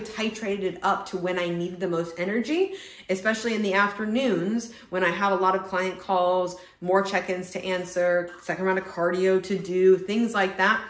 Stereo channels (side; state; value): both; identical; correlation 1.00